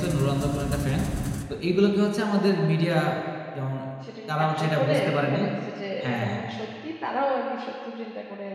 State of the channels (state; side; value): identical; both; correlation 1.00